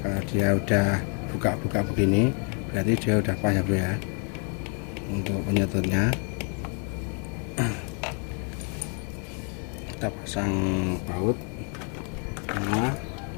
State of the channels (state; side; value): quieter; right; 40.0 dB